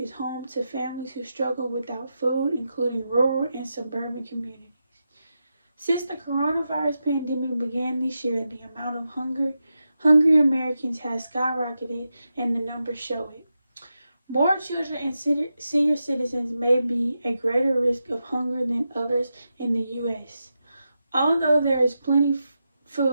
home to families who struggle without food, including rural and suburban communities. Since the coronavirus pandemic began this year, the amount of hungry Americans has skyrocketed and the numbers show it. More children and senior citizens may be at greater risk of hunger than others in the U.S. Although there is plenty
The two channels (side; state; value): both; inverted; correlation -0.88